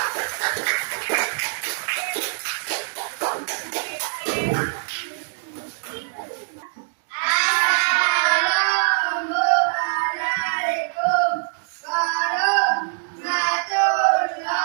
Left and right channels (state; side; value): silent; left; digital silence